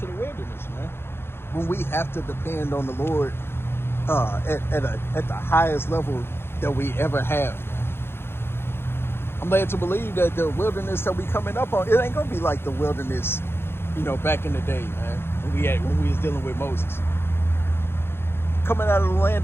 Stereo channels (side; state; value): right; late; 0.11 ms